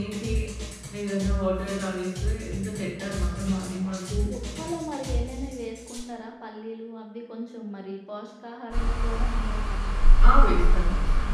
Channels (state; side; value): identical; both; correlation 1.00